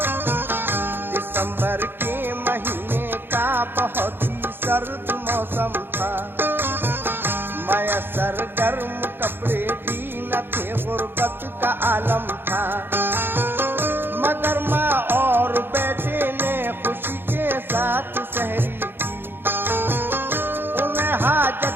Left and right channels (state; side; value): late; left; 0.10 ms